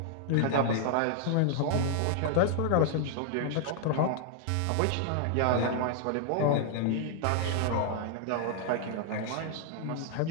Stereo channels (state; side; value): different; both; correlation -0.01